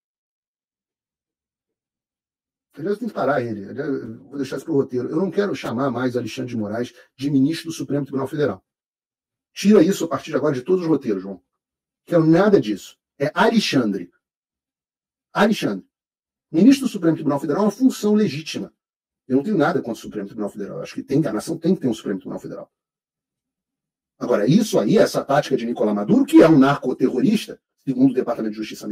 Aliás, tem que parar ele. Vou deixar isso para o roteiro. Eu não quero chamar mais Alexandre de Moraes de ministro do Supremo Tribunal Federal. Tira isso a partir de agora de todos os roteiros, João. Não quero nada disso. É Alexandre. Alexandre. Ministro do Supremo Tribunal Federal é uma função legítima. Eu não tenho nada contra o Supremo Tribunal Federal. Eu acho que a nação tem que ter um Supremo Tribunal Federal. Agora, isso aí, essa tática de Nicolás Maduro, que é um narcoterrorista, segundo o Departamento de Justiça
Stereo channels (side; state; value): both; identical; correlation 1.00